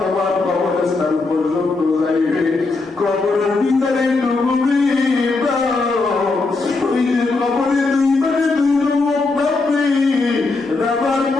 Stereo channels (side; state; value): right; quieter; 3.7 dB